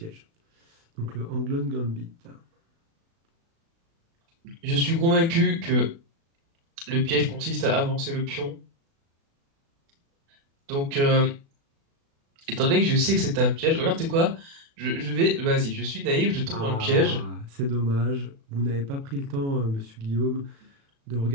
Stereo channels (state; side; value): late; left; 36 ms